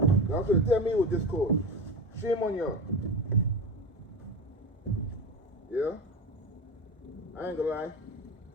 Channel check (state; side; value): normal; both; correlation 0.24